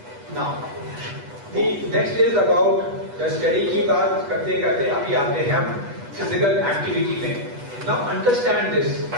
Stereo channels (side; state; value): left; late; 8.2 ms